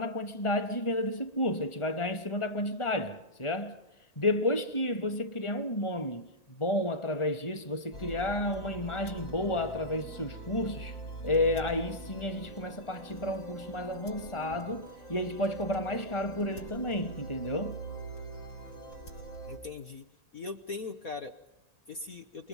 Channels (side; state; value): right; late; 1.4 ms